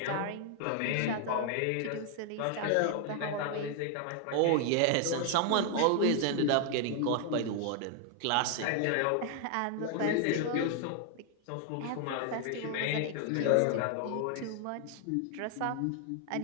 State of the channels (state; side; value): different; both; correlation 0.00